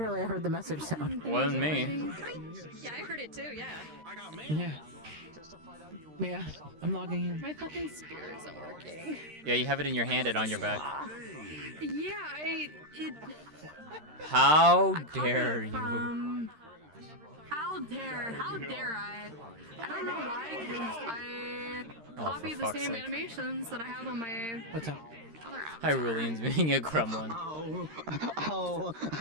I heard the message sound. Wasn't me. Yeah, I heard it too, yeah. Yeah, I'm logging in. My fucking spear isn't working. Yeah, you have it in your hand and on your back. Yeah, How I copied dare it you? from- How dare I? I don't know why, because I copied the fuck's same sake. animations that I have on my What's up? other avatar. Hyrulean's being a gremlin. Oh,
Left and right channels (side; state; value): left; late; 13 ms